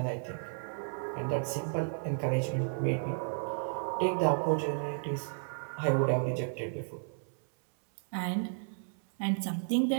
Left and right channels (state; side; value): silent; left; 56 dB below the other